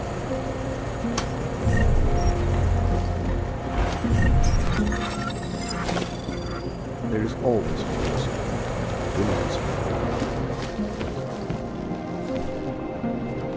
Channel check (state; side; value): identical; both; correlation 1.00